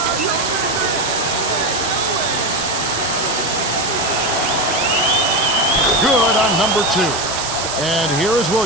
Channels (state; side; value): noise; right; hiss, 4 dB below the sound